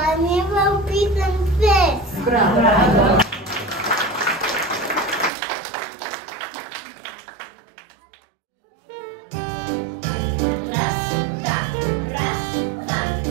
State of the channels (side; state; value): left; drops out; at 5.3 s